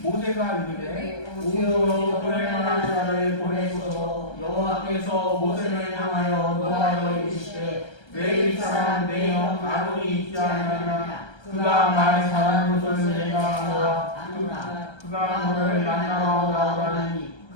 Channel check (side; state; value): right; late; 1.3 ms